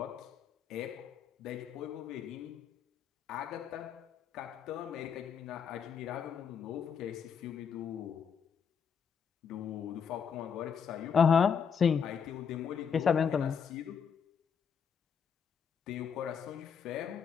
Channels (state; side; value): quieter; right; 7.0 dB